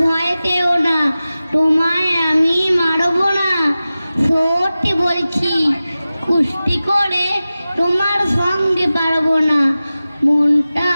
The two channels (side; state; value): both; inverted; correlation -0.95